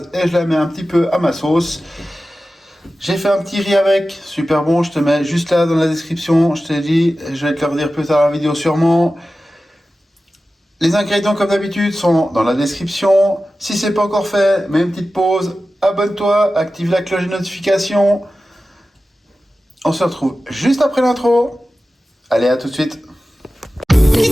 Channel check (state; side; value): normal; both; correlation 0.94